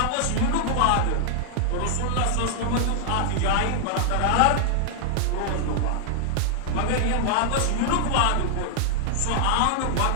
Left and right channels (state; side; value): different; both; correlation 0.00